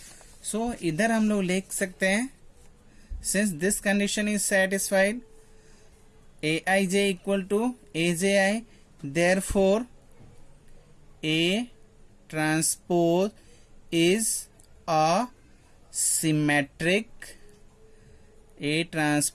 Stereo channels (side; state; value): both; identical; correlation 1.00